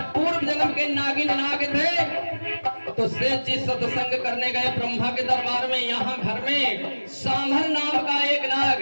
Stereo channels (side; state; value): both; inverted; correlation -1.00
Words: पूर्व जन्म के नागिन नाग थे तो शेष जी सत्संग करने गए ब्रह्मा के दरबार में। यहाँ घर में सांभर नाम का एक नाग,